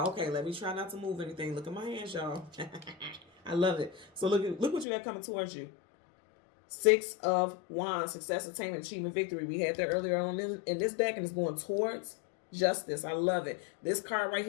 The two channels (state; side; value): drops out; right; at 4.9 s